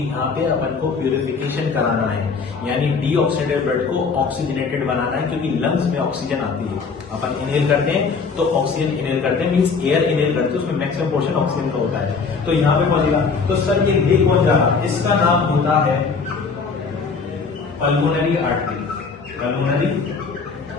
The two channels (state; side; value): quieter; right; 5.0 dB